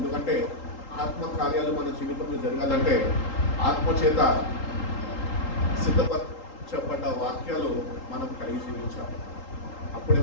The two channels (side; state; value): right; late; 3.8 ms